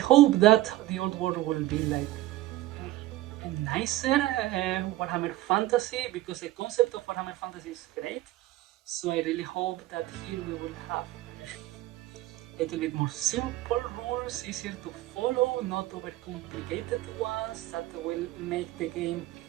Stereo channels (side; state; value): left; quieter; 15.9 dB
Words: that the Old World will be like a nicer Warhammer Fantasy, because the concept of Warhammer Fantasy is great. So I really hope that here we will have a little bit more simple rules, easier to follow, not overcomplicated ones that will make the game